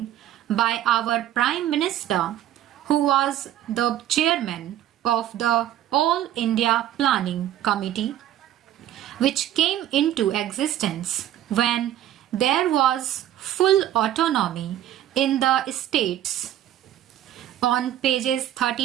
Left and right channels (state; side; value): quieter; left; 12.2 dB